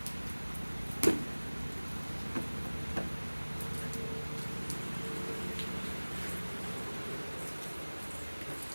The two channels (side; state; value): both; inverted; correlation -1.00